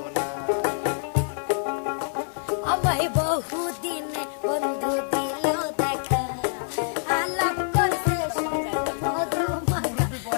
না আমায় বহুদিন বন্ধু দিল দেখা আলাপ করতে সুন্দর মধু মাখা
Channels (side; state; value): right; silent; digital silence